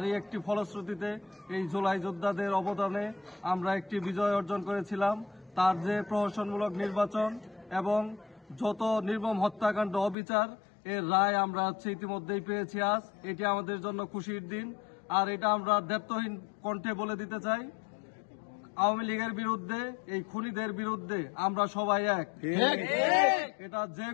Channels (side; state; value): right; drops out; at 10.2 s